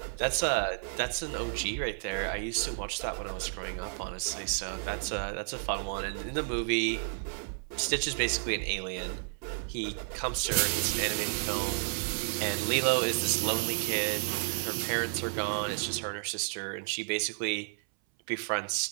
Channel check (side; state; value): left; silent; 57 dB below the other